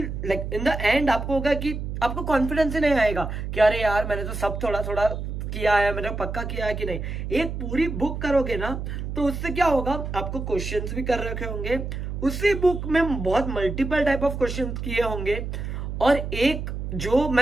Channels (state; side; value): noise; right; hum, 5 dB below the sound